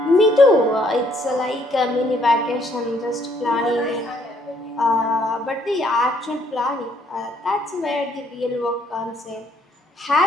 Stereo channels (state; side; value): normal; both; correlation 0.67